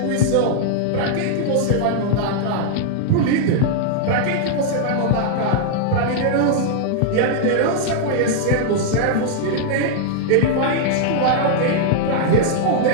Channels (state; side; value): different; both; correlation -0.01